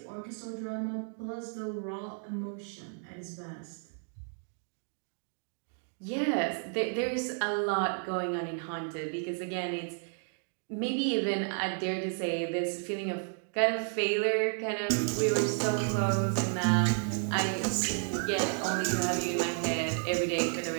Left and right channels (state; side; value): silent; left; 56 dB below the other